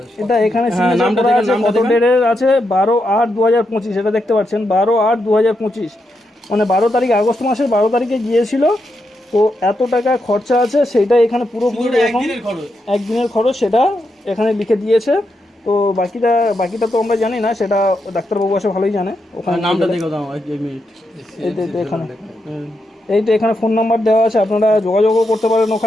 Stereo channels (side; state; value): both; normal; correlation 0.83